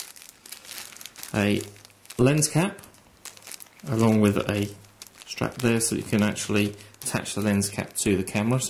a lens cap, along with a strap there so you can actually attach the lens cap to the camera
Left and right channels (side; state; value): both; identical; correlation 1.00